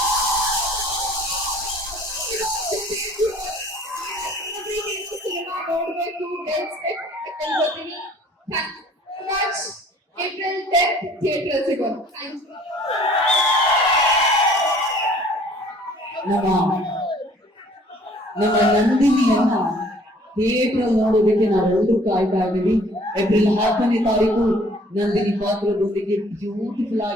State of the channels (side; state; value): both; normal; correlation 0.55